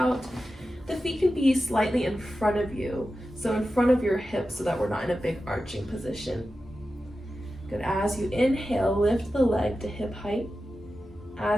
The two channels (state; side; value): normal; both; correlation 0.92